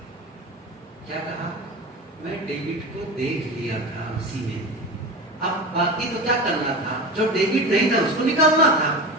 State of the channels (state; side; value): normal; both; correlation 0.28